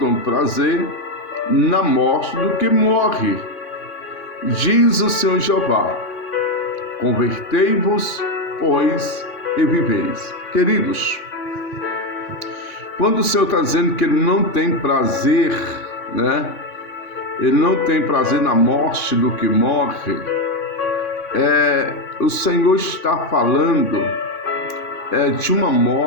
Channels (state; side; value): late; right; 3.5 ms